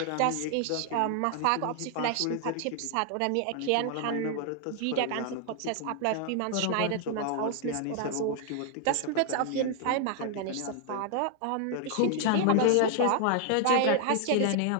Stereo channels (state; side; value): different; both; correlation 0.00